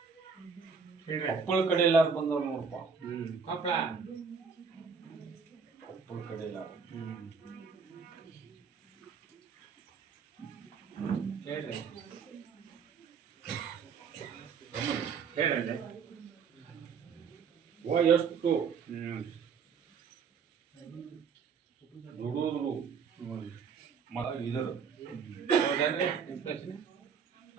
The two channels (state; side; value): quieter; left; 6.0 dB